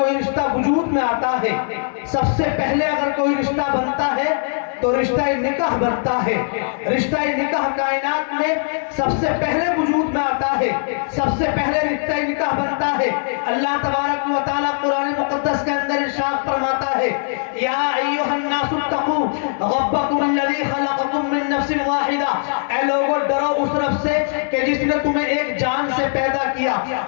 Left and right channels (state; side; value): silent; right; digital silence